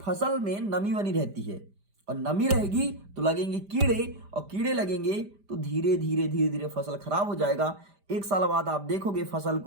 में नमी बनी रहती है और नमी रहेगी तो लगेंगे कीड़े, और कीड़े लगेंगे तो धीरे धीरे धीरे धीरे फसल खराब हो जाएगा। 1 साल बाद आप देखोगे फसल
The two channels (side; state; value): left; late; 5.0 ms